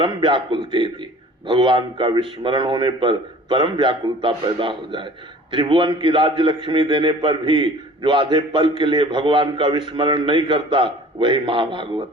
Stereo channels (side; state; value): both; normal; correlation 0.47